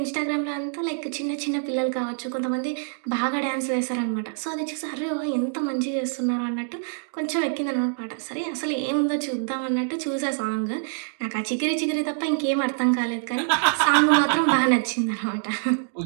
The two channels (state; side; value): silent; left; digital silence